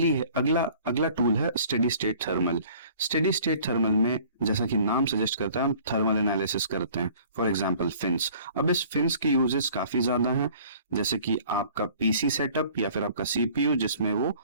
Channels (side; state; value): both; inverted; correlation -0.51